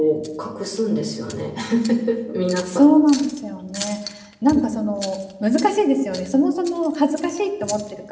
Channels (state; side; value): identical; both; correlation 1.00